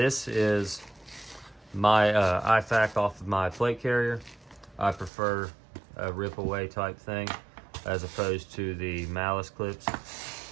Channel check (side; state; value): left; drops out; at 5.1 s